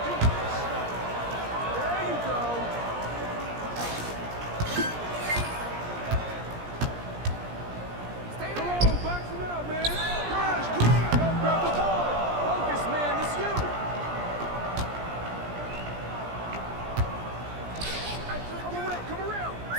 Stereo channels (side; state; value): left; late; 17 ms